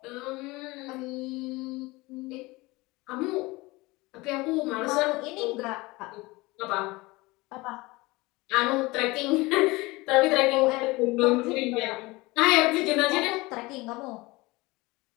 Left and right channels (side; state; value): right; quieter; 22.3 dB